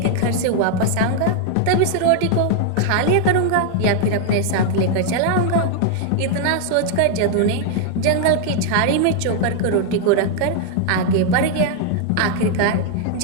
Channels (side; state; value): both; different; correlation 0.00